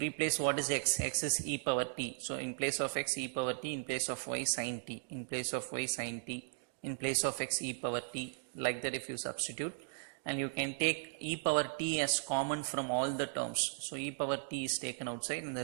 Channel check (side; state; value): left; silent; digital silence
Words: what is x, x is e power t, so in place of x e power t, in place of y sin t, in place of y sin t, in place of x e power t, like that if you substitute. And you can take e power t as common from all the terms. So e power t is taken outside and the